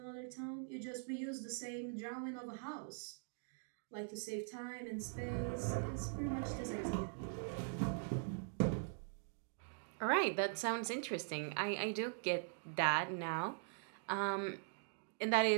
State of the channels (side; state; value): left; silent; digital silence